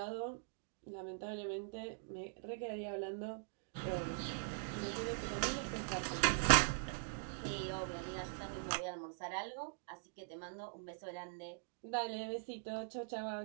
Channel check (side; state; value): left; silent; digital silence